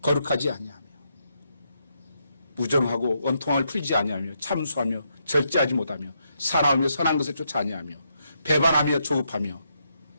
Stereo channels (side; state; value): both; inverted; correlation -0.79